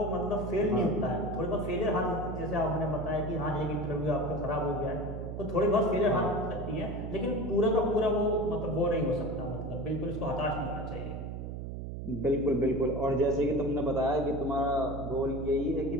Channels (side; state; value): right; noise; hum, 6 dB below the sound